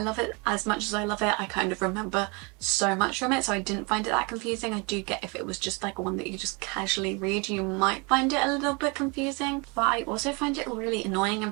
love it as much as I love it, I kind of remember so much from it, so I didn't find it that confusing. I do get if it was just like one that you just casually read, you might find it a little bit confusing, but I also find it really annoying in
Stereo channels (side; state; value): left; quieter; 30.0 dB